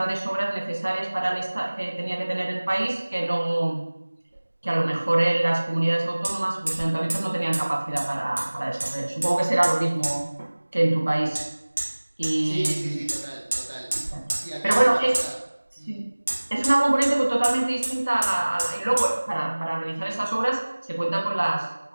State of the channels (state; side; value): inverted; both; correlation -1.00